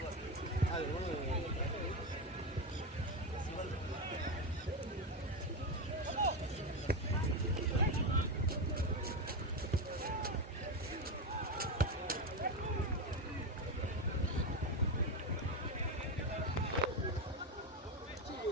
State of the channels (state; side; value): normal; both; correlation 0.13